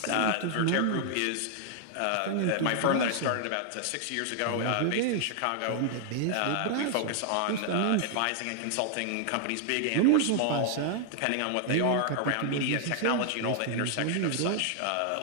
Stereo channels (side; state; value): both; different; correlation -0.01